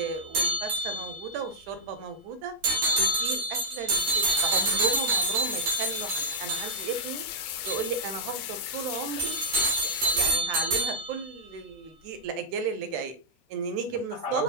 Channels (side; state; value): both; normal; correlation -0.07